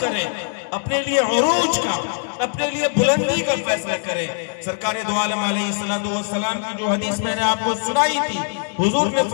اپنے لیے عروج کا، اپنے لیے بلندی کا فیصلہ کریں۔ سرکار دو عالم علیہ السلام کی جو حدیث میں نے آپ کو سنائی تھی، حضور نے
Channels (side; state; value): right; silent; digital silence